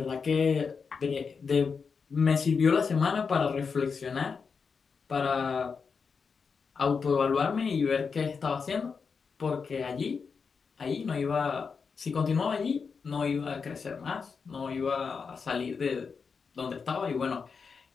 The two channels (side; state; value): right; quieter; 5.5 dB